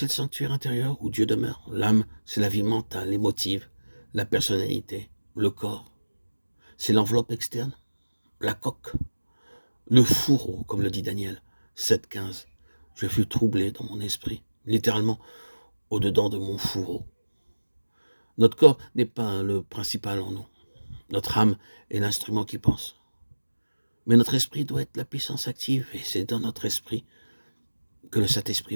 le sanctuaire intérieur où Dieu demeure. L'âme, c'est la vie mentale, émotive, la personnalité, le corps. C'est l'enveloppe externe, la coque, le fourreau, comme le dit Daniel 7.15. Je fus troublé dans mon esprit, littéralement au-dedans de mon fourreau. Notre corps n'est pas le principal en nous. Notre âme est l'instrument qui pense. Mais notre esprit doit être la puissance active, et c'est dans notre esprit que le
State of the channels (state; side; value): inverted; both; correlation -1.00